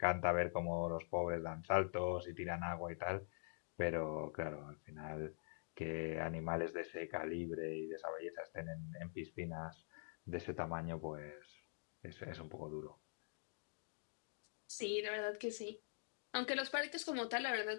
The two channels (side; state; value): right; silent; digital silence